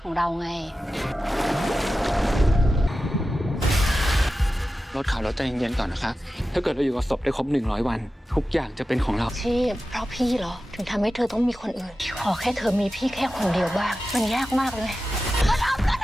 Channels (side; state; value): both; normal; correlation 0.93